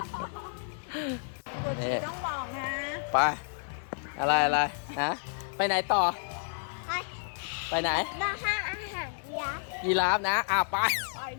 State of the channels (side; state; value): right; silent; 57 dB below the other